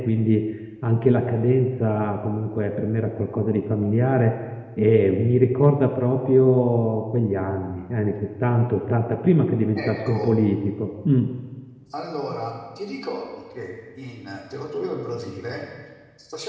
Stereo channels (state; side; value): identical; both; correlation 1.00